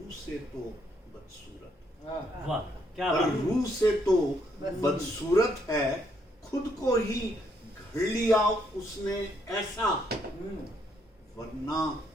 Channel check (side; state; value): both; normal; correlation 0.72